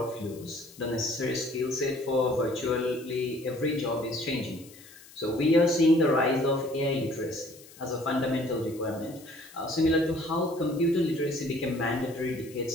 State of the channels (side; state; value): left; noise; hiss, 21 dB below the sound